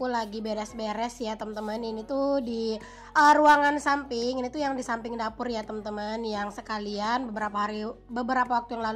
lagi beres-beres ya teman-teman. Ini tuh di ruangan samping, ini tuh yang di samping dapur ya teman-teman, yang sekalian beberapa waktu yang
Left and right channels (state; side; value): identical; both; correlation 1.00